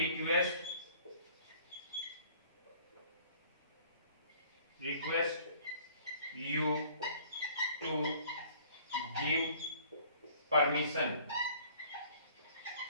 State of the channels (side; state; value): both; inverted; correlation -0.54